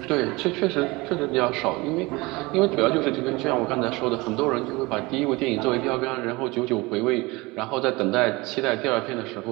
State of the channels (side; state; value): left; quieter; 23.3 dB